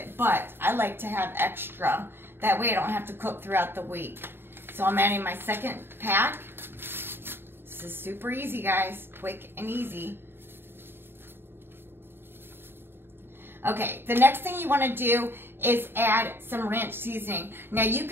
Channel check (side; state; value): left; late; 0.11 ms